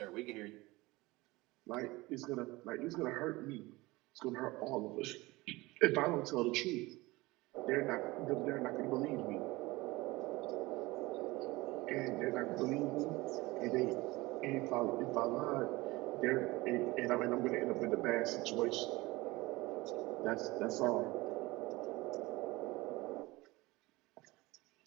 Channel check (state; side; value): quieter; left; 21.3 dB